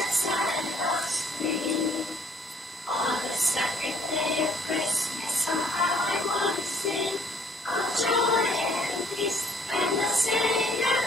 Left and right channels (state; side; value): normal; both; correlation 0.60